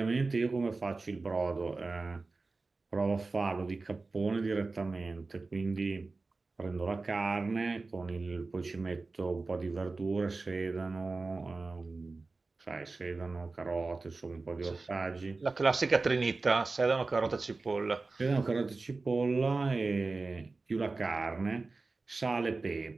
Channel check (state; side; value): quieter; left; 3.7 dB